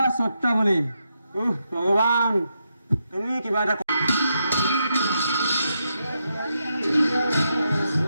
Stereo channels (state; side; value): inverted; both; correlation -0.83